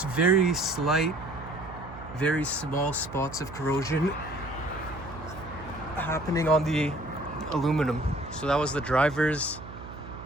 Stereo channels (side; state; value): right; noise; hum, 14 dB below the sound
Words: very slight, very small spots of corrosion happening on the aluminum. So that was the driver's